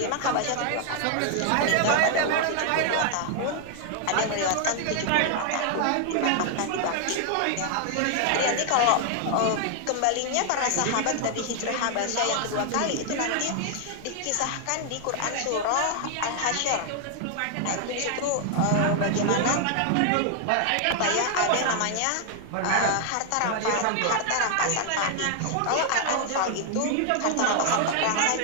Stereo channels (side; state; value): both; different; correlation 0.00